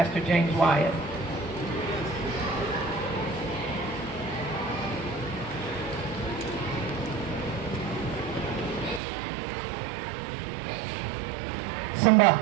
James Wyatt. Simba.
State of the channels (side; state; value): left; drops out; at 9.0 s